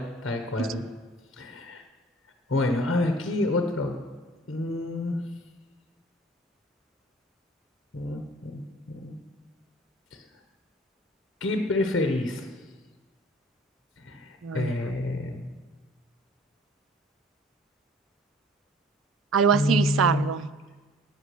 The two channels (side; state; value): both; normal; correlation 0.52